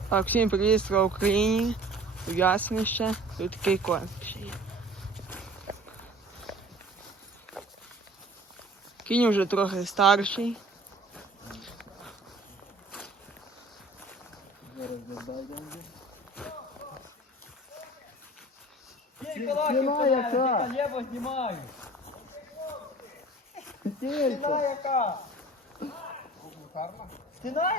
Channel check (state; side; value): normal; both; correlation 0.46